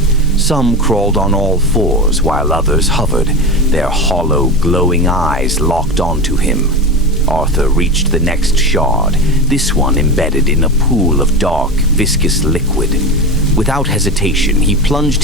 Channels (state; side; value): normal; both; correlation 0.24